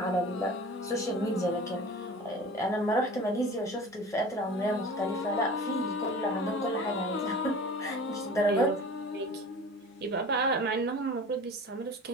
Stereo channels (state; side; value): normal; both; correlation 0.39